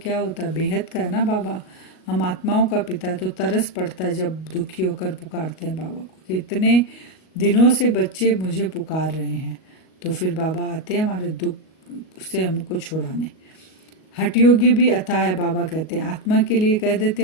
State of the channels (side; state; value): right; late; 38 ms